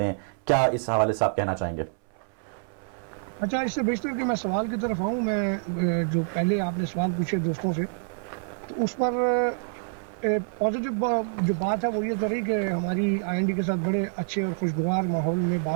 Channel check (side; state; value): left; silent; 60 dB below the other